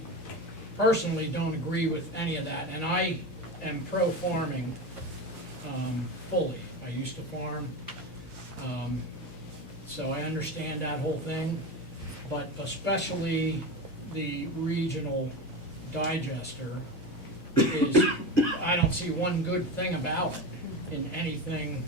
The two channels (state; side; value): normal; both; correlation 0.23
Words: personally don't agree with any of that, and I am pro-farming fully. I used to farm, so I understand that whole thing, but especially the regional digester is, I don't see one good thing about it in anything